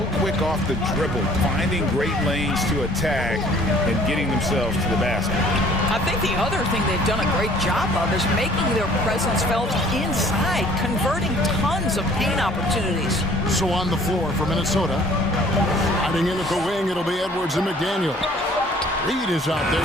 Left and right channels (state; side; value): normal; both; correlation 0.55